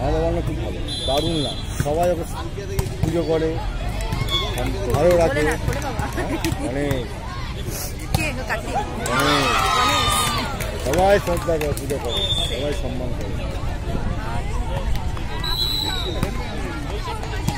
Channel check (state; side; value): identical; both; correlation 1.00